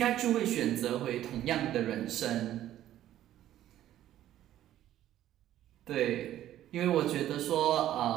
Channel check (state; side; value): quieter; left; 12.7 dB